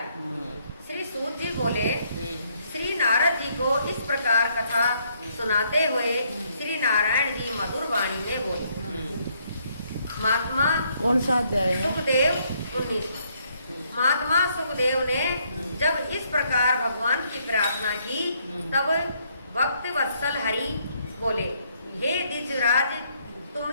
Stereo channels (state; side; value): inverted; both; correlation -0.70